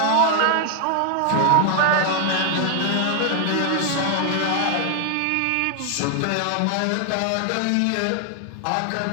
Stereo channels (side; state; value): both; different; correlation 0.00